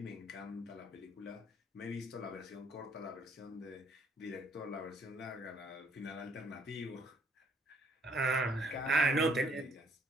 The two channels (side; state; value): both; normal; correlation 0.64